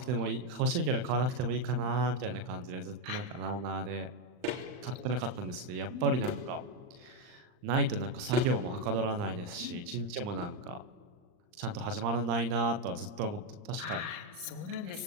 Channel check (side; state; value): left; late; 39 ms